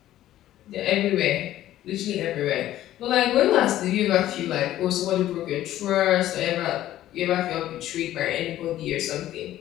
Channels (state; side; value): quieter; right; 13.4 dB